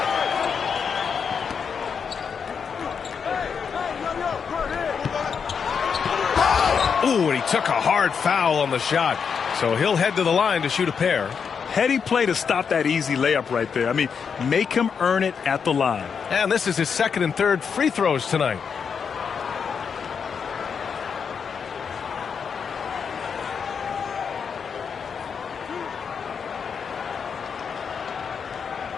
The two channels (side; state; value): right; quieter; 6.4 dB